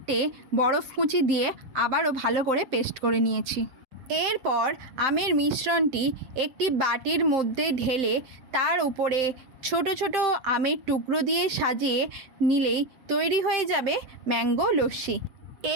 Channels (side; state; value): left; late; 7.7 ms